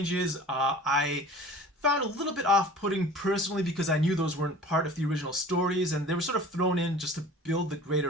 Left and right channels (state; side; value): normal; both; correlation 0.42